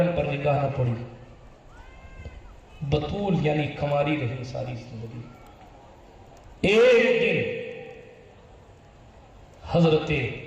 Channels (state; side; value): identical; both; correlation 1.00